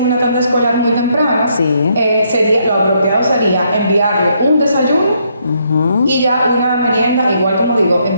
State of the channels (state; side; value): inverted; both; correlation -0.73